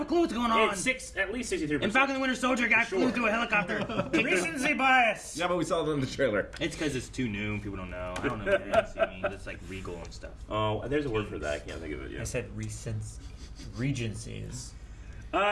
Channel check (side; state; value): both; identical; correlation 1.00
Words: a clue what's going on. It's at least 63%. And Falcon the Winter Soldier got flew through a helicopter. Recency bias. Yeah, but we saw it in the trailer. It's because it's too new and people don't know. I don't know what recency means. It's like regal and stuff. Oh, there's a word for that. I can't think of it I yet. said regencies.